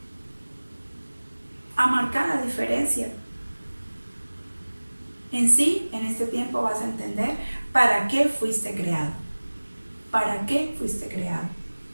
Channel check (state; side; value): inverted; both; correlation -1.00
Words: a marcar la diferencia. En sí, en este tiempo vas a entender para qué fuiste creado, para qué fuiste creado,